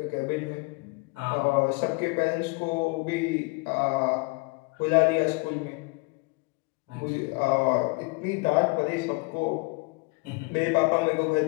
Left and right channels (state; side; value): quieter; right; 27.5 dB